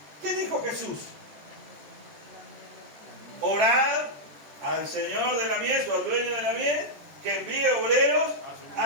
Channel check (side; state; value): left; late; 14 ms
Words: ¿Qué dijo Jesús? Orad al Señor de la mies o al dueño de la mies que envíe obreros